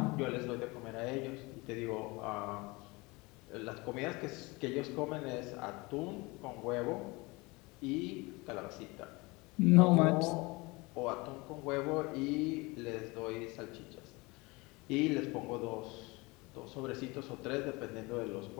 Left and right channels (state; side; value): quieter; right; 24.7 dB